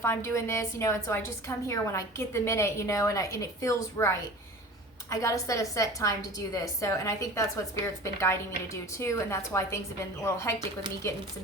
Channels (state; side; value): normal; both; correlation 0.39